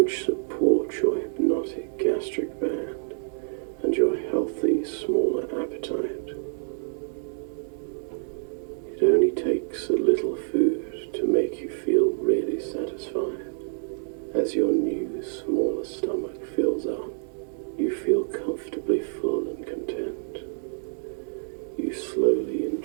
support your hypnotic gastric band and your healthy, smaller appetite. It only takes a little food to make you feel really satisfied. As your new, smaller stomach fills up, you feel comfortably full and content. You slowly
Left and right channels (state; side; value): silent; left; digital silence